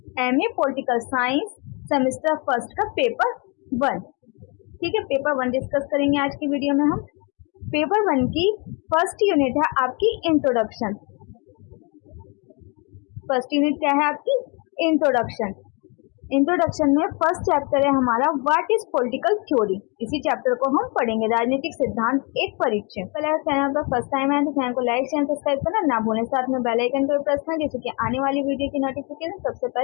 MA political science, semester first का पेपर 1। ठीक है, पेपर 1 डिस्कस करेंगे आज की वीडियो में हम। पेपर 1 की फर्स्ट यूनिट है आपकी इंट्रोडक्शन। फर्स्ट यूनिट क्या है आपकी? इंट्रोडक्शन। इंट्रोडक्शन में फर्स्ट चैप्टर है हमारा व्हाट इज पॉलिटिकल थ्योरी। इसी चैप्टर को हम पढ़ेंगे, राजनीतिक सिद्धांत एक परिचय। पहले चैनल पर फर्स्ट टाइम आए तो चैनल को लाइक शेयर सब्सक्राइब करना ना भूलें, साथ में बेल आइकन को प्रेस करें जिससे कि आने वाली वीडियो की नोटिफिकेशन सबसे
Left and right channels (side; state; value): right; quieter; 31.9 dB